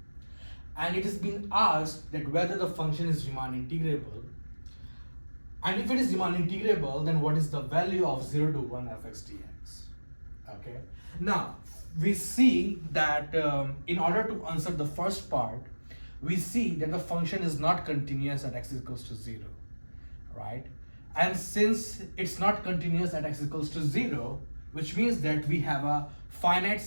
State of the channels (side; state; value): both; inverted; correlation -1.00